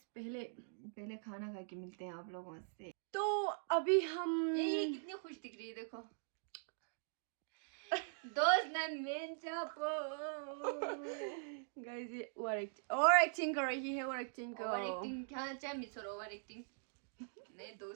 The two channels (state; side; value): silent; left; digital silence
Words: पहले खाना खा के मिलते हैं आप लोगों से। तो अभी हम ये कितनी खुश दिख रही है देखो। दोस्त ने मेन चापो गाइस, ये ओवर एक्टिंग कर रही है, ओवर एक्टिंग क्या चाहे मिसर ओवर एक्टिंग। नए